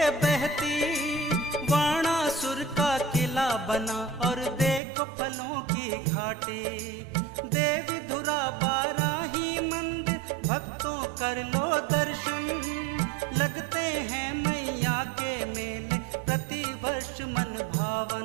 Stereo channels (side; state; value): left; drops out; at 4.8 s